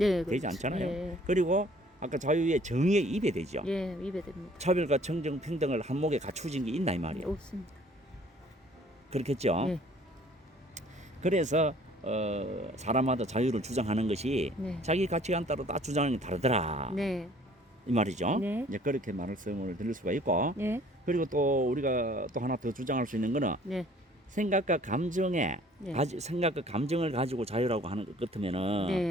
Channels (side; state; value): both; normal; correlation 0.55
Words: 되지 그렇죠. 않잖아요. 예. 그리고 아까 자유의 정의에 입에되죠. 예. 위배됩니다. 차별과 정정 평등을 한목에 갖추어진 게 있나 이 말이에요. 없습니다. 그렇겠죠. 네. 그래서 사람마다 자유를 주장하는 것이 네. 자기 가치관 따라 다 주장하는 게 다르더라 네. 이 말이죠. 네. 이제 그렇게 말씀을 드릴 수가 있고 네. 그리고 또 우리가 또 하나 더 주장할 수 있는 거는 네. 생각과 감정에 네. 생각과 감정을 가지고 자유라고 하는 것 같으면은